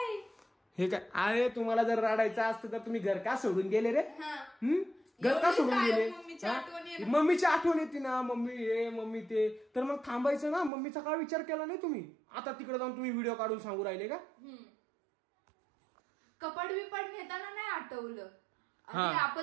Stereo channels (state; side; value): drops out; left; at 10.7 s